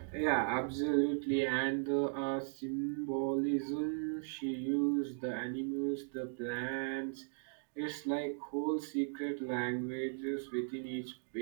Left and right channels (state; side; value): silent; left; digital silence